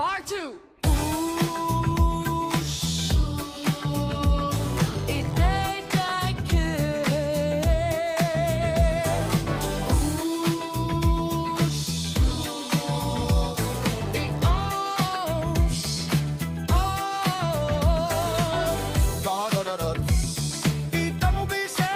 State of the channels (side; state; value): both; identical; correlation 1.00